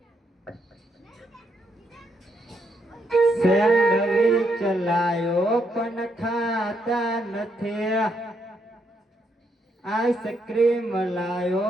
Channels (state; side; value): normal; both; correlation 0.77